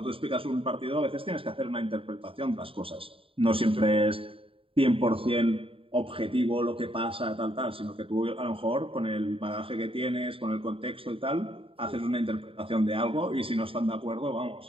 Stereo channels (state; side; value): late; left; 0.27 ms